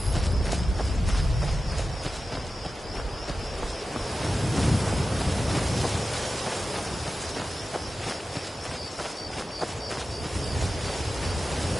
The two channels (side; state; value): both; normal; correlation 0.94